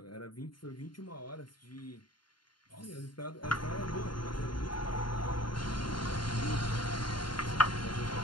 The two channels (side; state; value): right; late; 0.72 ms